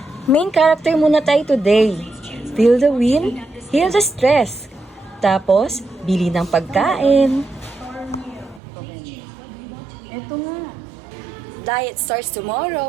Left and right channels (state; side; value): drops out; left; at 8.6 s